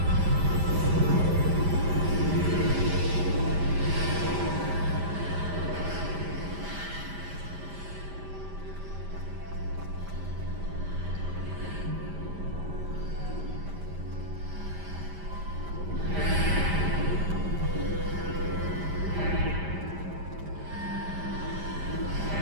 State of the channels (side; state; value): left; late; 5.0 ms